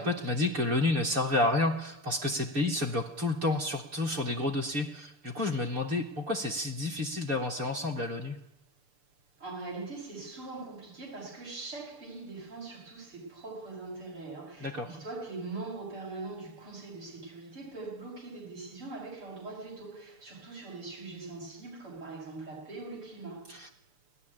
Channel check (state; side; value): late; left; 6.8 ms